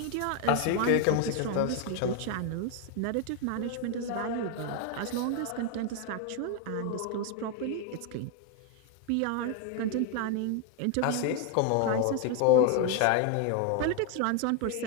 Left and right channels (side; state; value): both; different; correlation 0.01